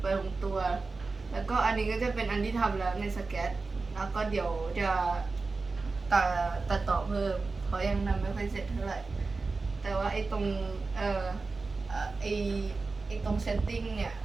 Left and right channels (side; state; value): left; quieter; 4.0 dB